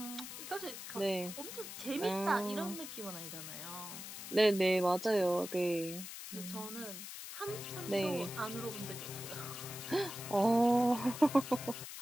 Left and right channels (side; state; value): left; noise; hiss, 9 dB below the sound